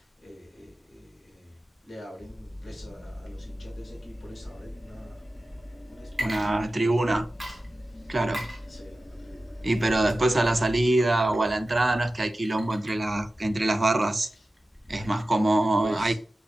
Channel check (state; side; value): normal; both; correlation 0.95